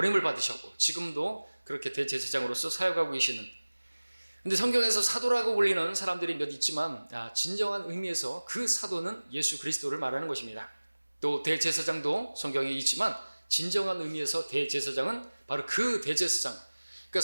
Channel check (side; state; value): both; inverted; correlation -1.00